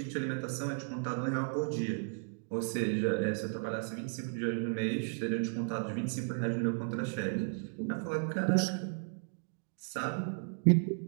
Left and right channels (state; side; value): silent; left; 55 dB below the other